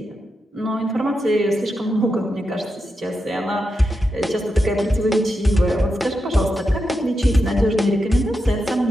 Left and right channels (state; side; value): normal; both; correlation 0.87